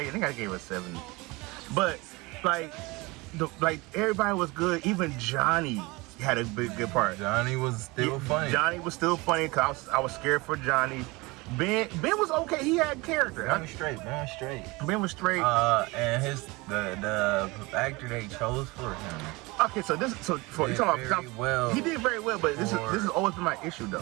think I gave it a 7. But like everybody was good. Even Johnny had a good part. Johnny was still funny. Johnny was still funny because I was scared for Johnny. Ben was okay. He had character. Ben was straight. Ben was straight. And the actor they chose for him. Okay, so you talking about well. He did very well, but this has always been my issue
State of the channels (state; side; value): quieter; left; 23.9 dB